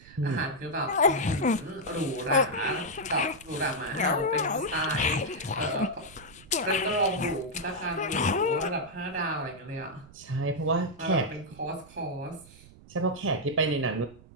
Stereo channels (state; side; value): noise; right; rumble, 22 dB below the sound